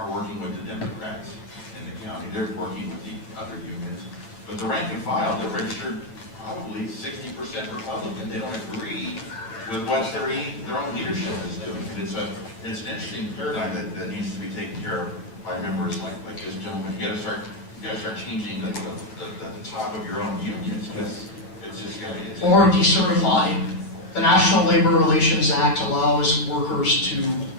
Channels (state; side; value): late; right; 8.8 ms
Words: working with the Democrats in the county. They're working with the other unions. But the rank and file, they're registered probably 60% Republican. They don't agree with what their own leadership is doing. And it's an interesting paradigm that needs to be taken care of by members like this gentleman. You gotta start changing the top of your own unions, because it's just gotta be. Or decertify. The National Labor Relations Act allows workers to